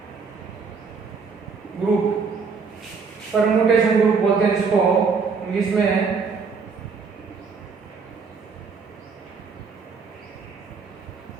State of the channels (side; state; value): left; quieter; 5.2 dB